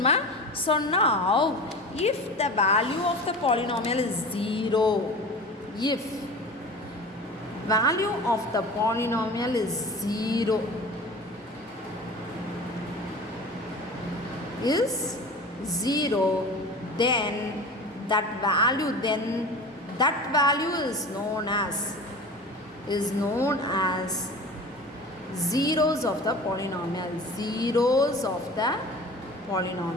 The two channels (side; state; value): both; normal; correlation 0.36